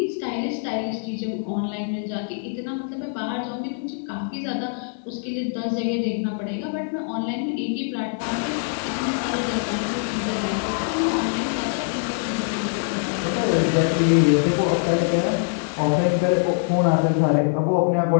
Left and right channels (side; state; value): right; silent; 59 dB below the other